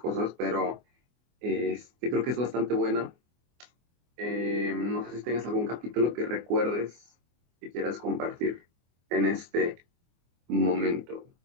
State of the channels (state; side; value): late; left; 24 ms